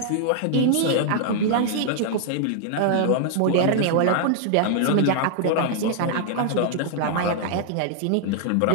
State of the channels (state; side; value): different; both; correlation -0.01